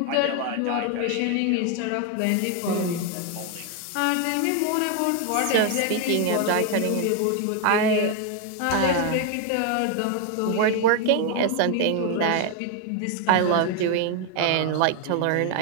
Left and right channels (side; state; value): both; different; correlation 0.01